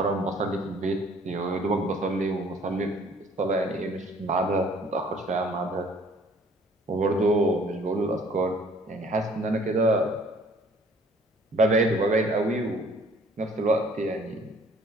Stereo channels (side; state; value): both; normal; correlation 0.56